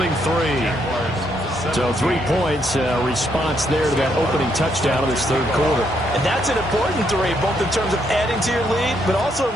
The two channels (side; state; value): both; normal; correlation 0.74